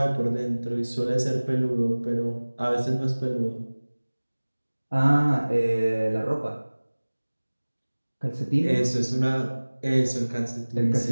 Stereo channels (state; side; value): inverted; both; correlation -1.00